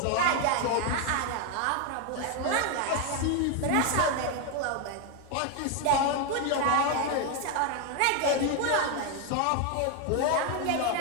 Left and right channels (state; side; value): different; both; correlation 0.01